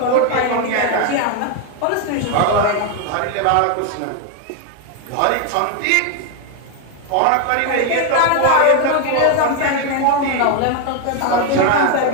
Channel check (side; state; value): both; different; correlation 0.01